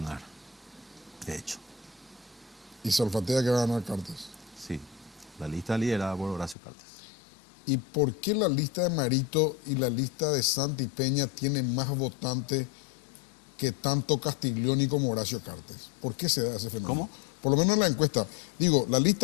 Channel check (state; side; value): drops out; right; at 6.6 s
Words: de hecho. Y se olfatea que va a ganar Cartes. Sí, la lista liderada por Horacio Cartes. ¿Y por qué la lista de Marito y la lista de Santi Peña tienen más votantes que tanto Castiglioni como Horacio Cartes? ¿Por qué se da ese fenómeno? ¿Cómo? Por lo menos en la encuesta. Digo, la